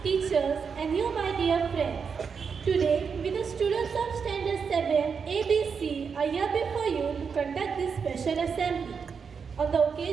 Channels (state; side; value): quieter; left; 6.0 dB